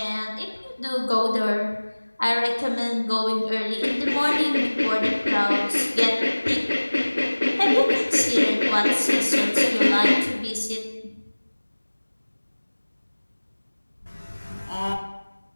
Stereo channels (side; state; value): both; inverted; correlation -1.00